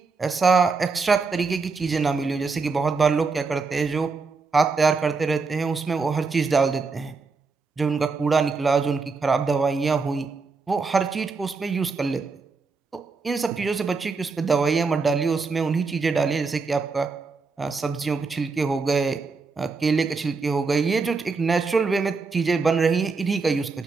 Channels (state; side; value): quieter; left; 4.4 dB